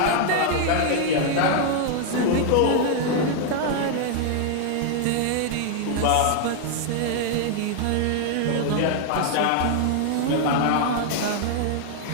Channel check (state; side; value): different; both; correlation 0.00